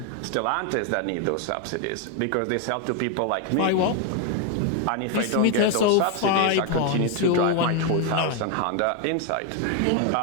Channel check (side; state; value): both; different; correlation 0.01